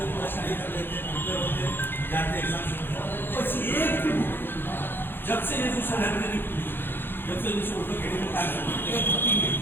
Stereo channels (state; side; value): late; right; 0.10 ms